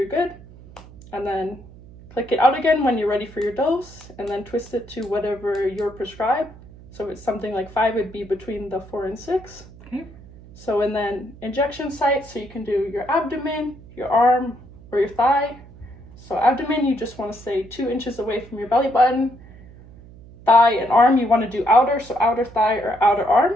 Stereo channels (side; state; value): right; noise; hum, 20 dB below the sound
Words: good. And then click it out again when you're ready for your dose, and then twist it to whatever you're prescribed. So if it's something like 5, it'd be between the 4 and 6. Okay. So and then injection sites, so you can do your abdomen, your arm, or your thigh. So abdomen, you just want to stay 2 inches away from your belly button. Thigh and arm, you want to do outer, so outer thigh or outer arm.